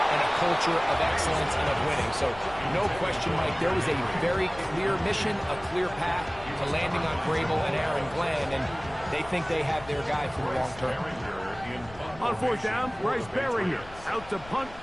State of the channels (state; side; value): noise; left; rumble, 18 dB below the sound